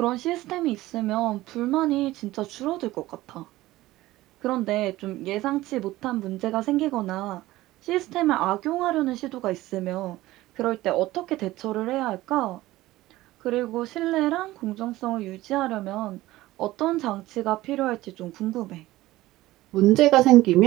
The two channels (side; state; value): left; quieter; 17.2 dB